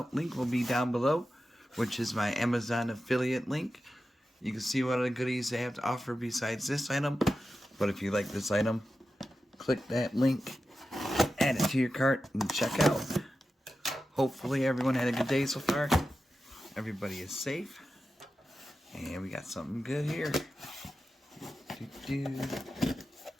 Link will be down below, which is my Amazon affiliate link. You can see what other goodies they have to offer besides this item. But if you like this item, click that link, add it to your cart, and check out. Hopefully everyone had a good day so far. Everybody is safe. And we got something good here.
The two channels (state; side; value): normal; both; correlation 0.92